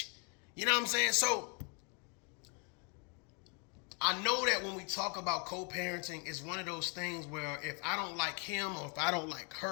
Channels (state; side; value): quieter; right; 36.0 dB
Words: You know what I'm saying? So I know that when we talk about co-parenting, it's one of those things where if I don't like him or if I don't like